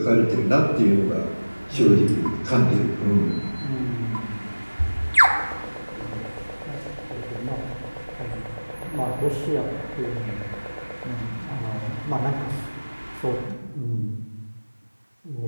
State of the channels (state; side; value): inverted; both; correlation -1.00